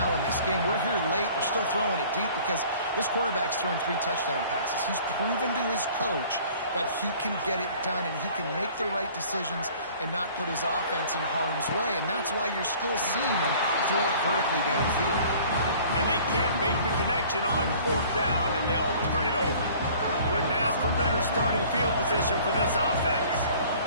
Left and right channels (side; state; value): both; inverted; correlation -0.50